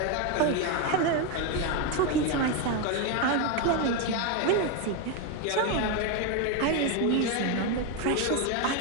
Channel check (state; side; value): different; both; correlation 0.02